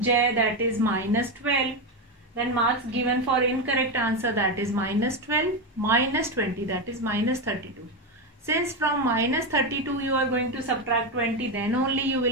J, that is minus 12. Then marks given for incorrect answer, that is minus 12 minus 20, that is minus 32. Since from minus 32 you are going to subtract 20, then only you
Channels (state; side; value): normal; both; correlation 0.11